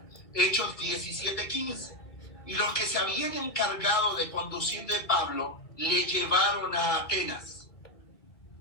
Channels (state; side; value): late; right; 2.2 ms